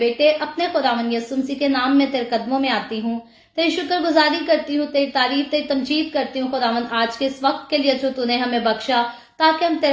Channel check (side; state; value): both; identical; correlation 1.00